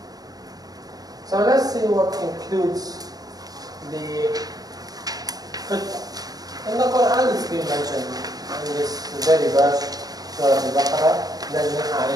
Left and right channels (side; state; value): left; late; 0.18 ms